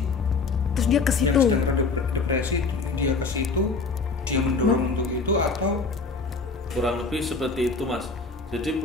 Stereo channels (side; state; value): right; quieter; 4.3 dB